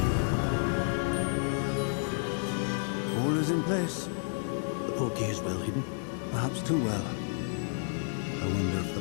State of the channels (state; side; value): silent; right; digital silence